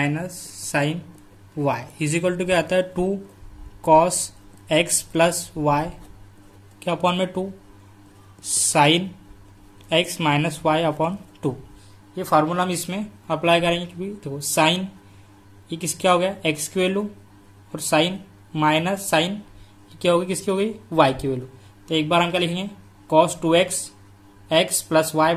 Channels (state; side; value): identical; both; correlation 1.00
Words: sine Y is equal to क्या आता है 2 कॉस एक्स प्लस वाई क्या अपॉन में 2 sine x minus Y upon 2। ये फार्मूला हम इसमें अप्लाई करेंगे, क्योंकि देखो साइन ये किस क्या हो गया एक्स की वैल्यू और साइन माइनस साइन क्या होगी किसकी हो गई वाई की वैल्यू। तो एक बार हम क्या लिखेंगे cos 2x x plus Y